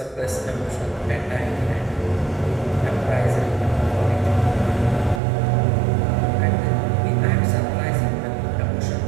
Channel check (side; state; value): left; drops out; at 5.2 s